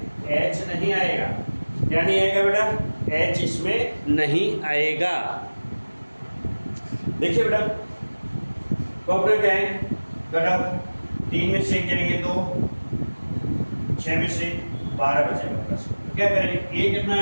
नहीं आएगा। क्या नहीं आएगा बेटा, एच इसमें नहीं आएगा। देखिए बेटा कॉपरेट क्या है घटक, 3 में से जाएंगे 2, 6 में से 12 बचेगा प्लस, क्या करेंगे, ए कितना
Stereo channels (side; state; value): both; inverted; correlation -1.00